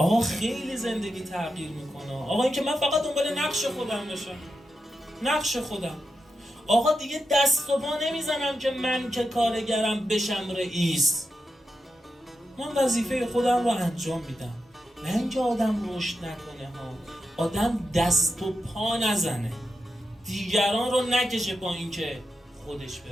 خیلی زندگی تغییر میکنه. آقا این که من فقط دنبال نقش خودم باشم، نقش خودم. آقا دیگه دست و پا نمیزنم که من که کارگرم بشم رئیس. من وظیفه خودم رو انجام میدم. نه اینکه آدم رشد نکنه ها، آدم دست و پا نزنه، دیگران رو نکشه با این که خودش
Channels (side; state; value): both; normal; correlation 0.88